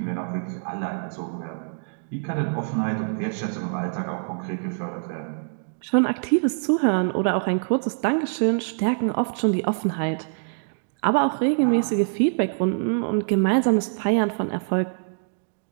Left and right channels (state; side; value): silent; left; digital silence